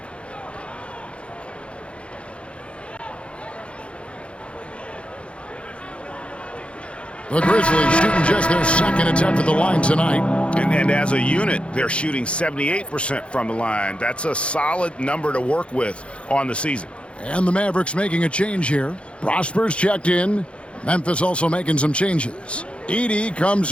The Grizzlies shooting just their second attempt at the line tonight. And as a unit, they're shooting 78% from the line. That's a solid number to work with on the season. And the Mavericks making a change here. Prosper's checked in. Memphis also making some changes. Edey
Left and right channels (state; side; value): late; right; 0.059 ms